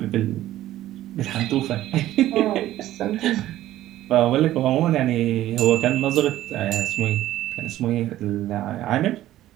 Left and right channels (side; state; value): left; quieter; 14.1 dB